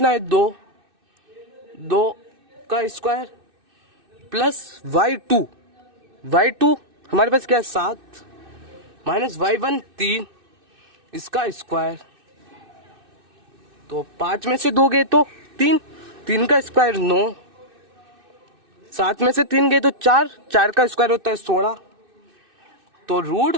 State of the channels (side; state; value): left; late; 2.6 ms